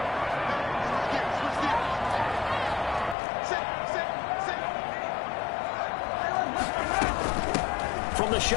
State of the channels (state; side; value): drops out; right; at 3.2 s